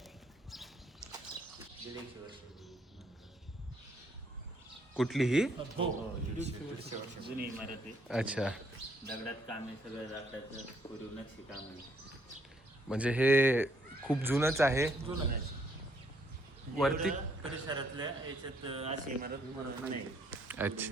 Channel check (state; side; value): normal; both; correlation 0.69